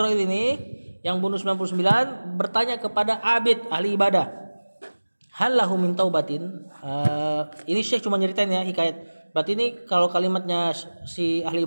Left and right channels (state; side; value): inverted; both; correlation -1.00